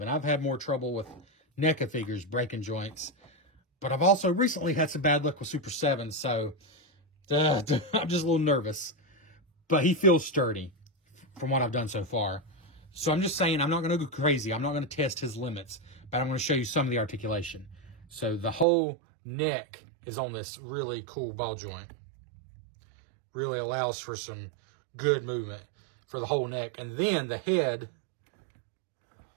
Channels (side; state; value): left; drops out; at 18.7 s